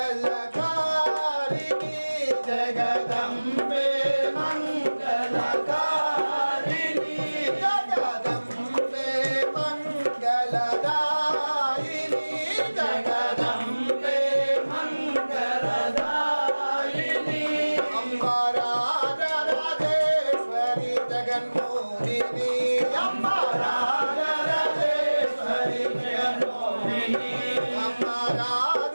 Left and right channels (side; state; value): both; inverted; correlation -1.00